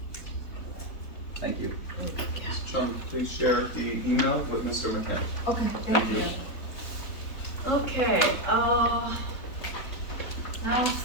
Thank you. Ms. Chung, please share the email with Mr. McCann. Okay, Thank thank you. you. Okay, now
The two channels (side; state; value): right; late; 3.6 ms